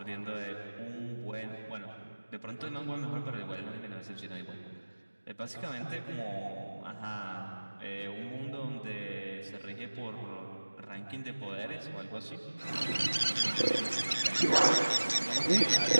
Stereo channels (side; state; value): both; inverted; correlation -1.00